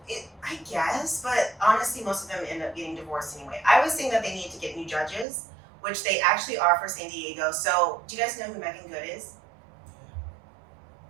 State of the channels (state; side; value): drops out; left; at 5.2 s